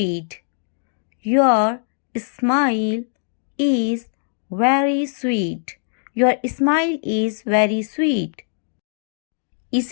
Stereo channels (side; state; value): right; silent; digital silence